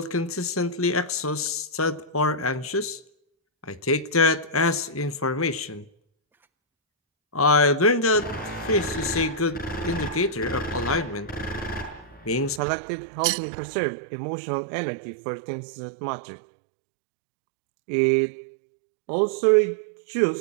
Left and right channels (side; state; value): left; drops out; at 12.6 s